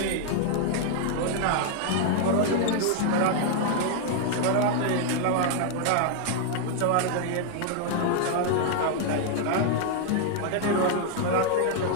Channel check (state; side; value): different; both; correlation 0.00